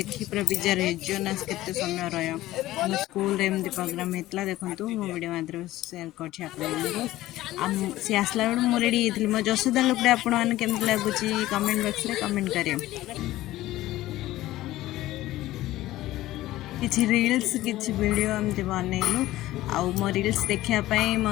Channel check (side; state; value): right; quieter; 16.0 dB